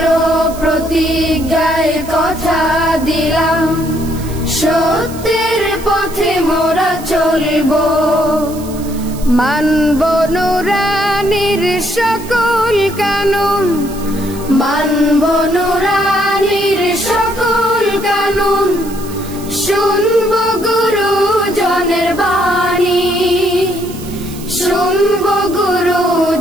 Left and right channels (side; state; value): right; noise; hiss, 17 dB below the sound